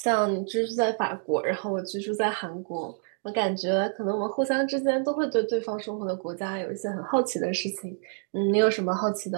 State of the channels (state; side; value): silent; left; 59 dB below the other